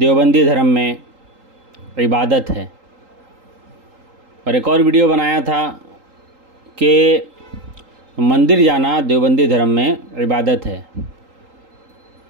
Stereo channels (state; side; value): late; left; 3.8 ms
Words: धर्म में इबादत है, और एक और वीडियो बनाया था कि मंदिर जाना देवबंदी धर्म में इबादत है।